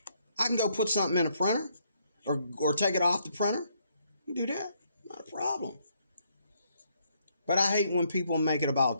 I can go put something in a printer or take it off the printer. You can do that. Not a problem. But I hate when people make it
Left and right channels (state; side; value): inverted; both; correlation -0.72